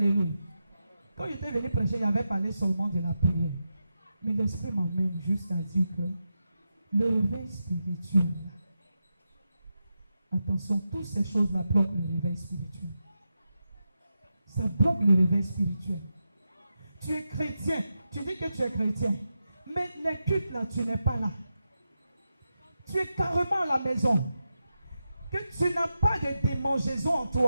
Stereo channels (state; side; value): inverted; both; correlation -0.89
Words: Quand j'étais venu prêcher, il avait parlé seulement de la prière. Mais l'Esprit m'emmène juste à dire que le réveil spirituel, attention, toutes ces choses-là bloquent le réveil spirituel. Ça bloque le réveil spirituel. Tu es chrétien, tu dis que tu es chrétien, mais les cultes là, tu n'es pas là. Tu es carrément à la maison. Que tu n'as pas de démangeaison en